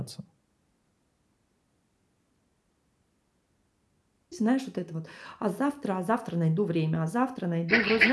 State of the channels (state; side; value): identical; both; correlation 1.00